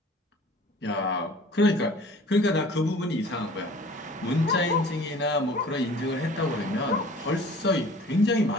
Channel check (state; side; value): normal; both; correlation 0.47